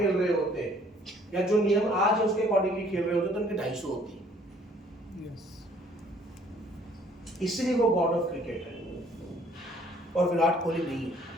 रहे होते, या जो नियम आज है उसके अकॉर्डिंगली खेल रहे होते, तो उनके 250 होती। इसलिए वो गॉड ऑफ क्रिकेट है और विराट कोहली नहीं है।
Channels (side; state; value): both; normal; correlation 0.59